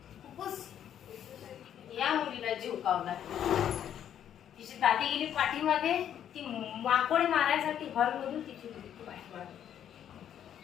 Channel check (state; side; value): quieter; right; 9.8 dB